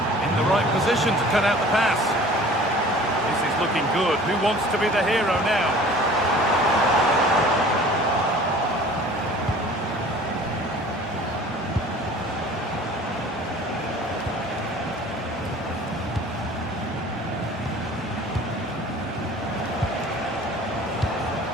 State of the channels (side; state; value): both; normal; correlation 0.46